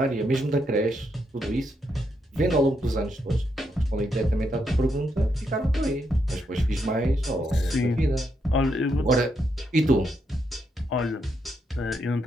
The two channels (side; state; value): both; normal; correlation 0.80